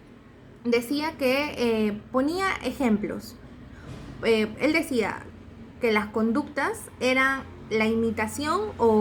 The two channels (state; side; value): identical; both; correlation 1.00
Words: decía que ponía ejemplos. Él decía que las conductas eran la imitación